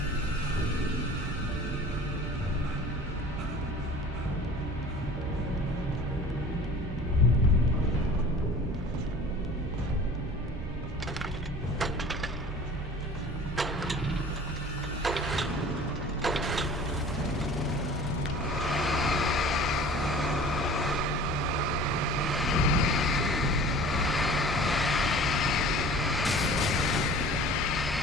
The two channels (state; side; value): normal; both; correlation 0.44